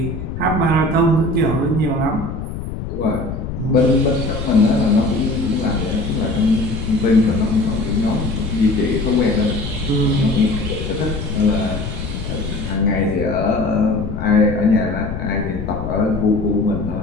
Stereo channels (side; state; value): left; noise; rumble, 7 dB below the sound